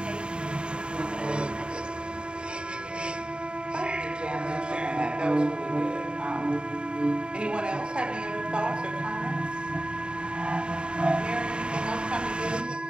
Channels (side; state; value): left; late; 0.052 ms